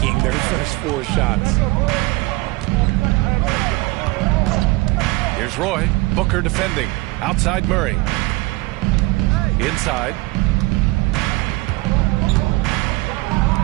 their first 4 shots. Here's Roy. Booker defending. Outside Murray. Inside.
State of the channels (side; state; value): left; quieter; 21.9 dB